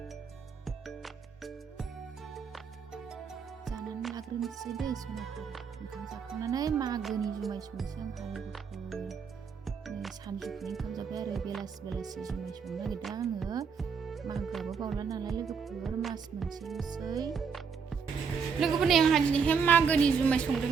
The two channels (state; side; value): quieter; left; 6.1 dB